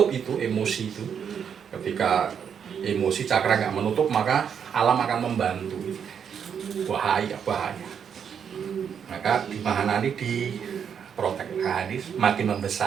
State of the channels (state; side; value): quieter; left; 7.6 dB